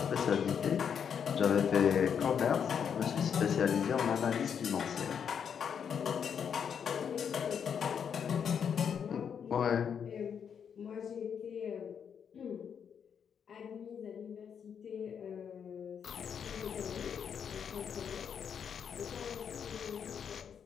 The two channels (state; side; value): quieter; right; 7.5 dB